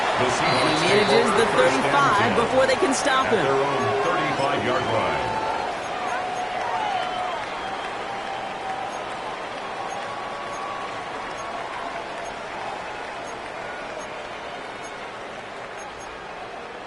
And he manages the 35 before they can stop him. Their own 35-yard line.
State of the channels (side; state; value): both; identical; correlation 1.00